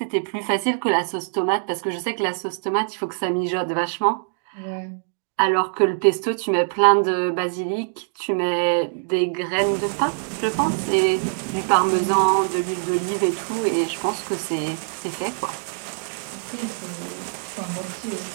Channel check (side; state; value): left; silent; digital silence